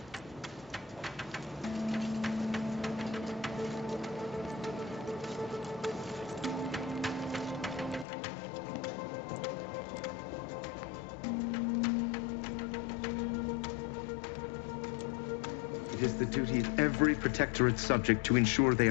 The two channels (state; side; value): drops out; right; at 8.1 s